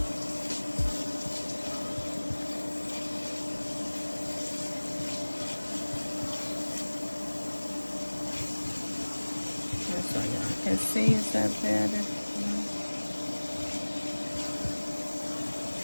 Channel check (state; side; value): inverted; both; correlation -1.00